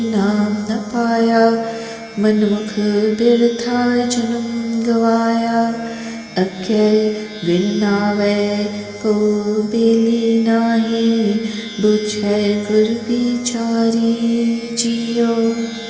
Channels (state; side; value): identical; both; correlation 1.00